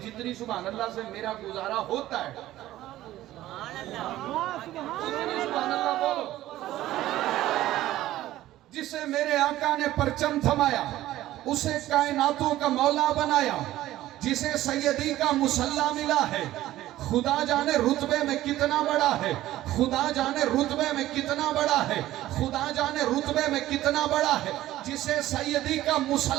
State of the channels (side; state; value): left; quieter; 14.8 dB